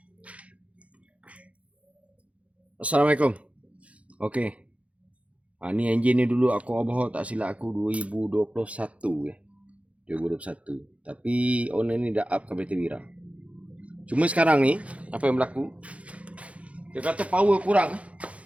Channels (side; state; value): left; late; 0.064 ms